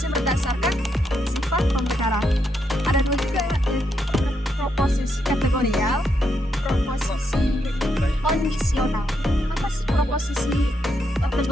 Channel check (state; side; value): normal; both; correlation 0.79